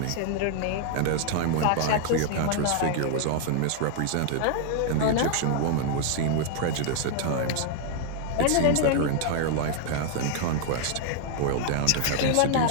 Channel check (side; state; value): both; different; correlation -0.01